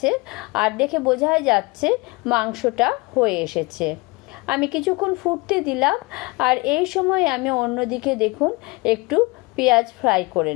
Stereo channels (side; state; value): right; quieter; 24.9 dB